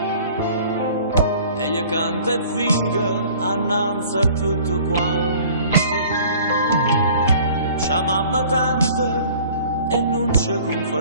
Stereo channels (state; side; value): inverted; both; correlation -0.49